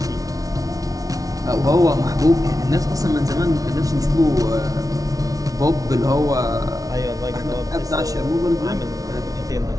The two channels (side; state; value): left; late; 0.18 ms